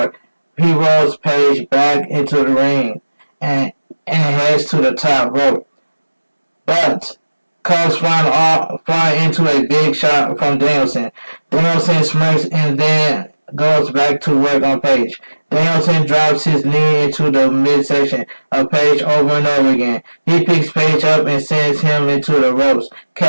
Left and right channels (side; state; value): both; inverted; correlation -1.00